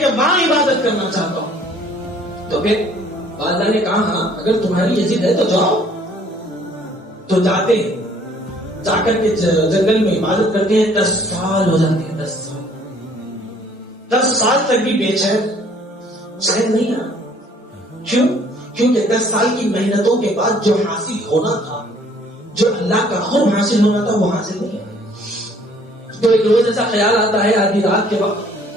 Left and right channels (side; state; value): both; normal; correlation 0.58